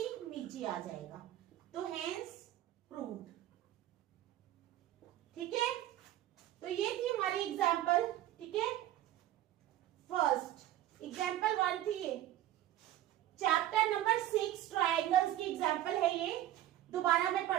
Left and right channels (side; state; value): left; quieter; 13.2 dB